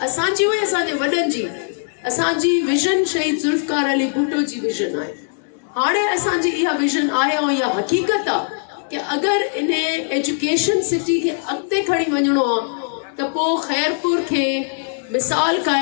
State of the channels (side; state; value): right; silent; 64 dB below the other